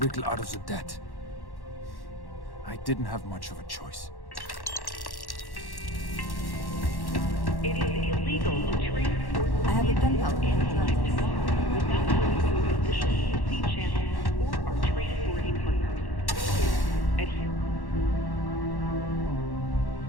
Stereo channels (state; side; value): late; right; 1.1 ms